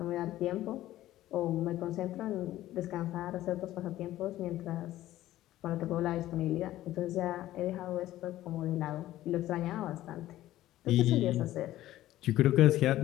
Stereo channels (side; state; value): right; quieter; 14.6 dB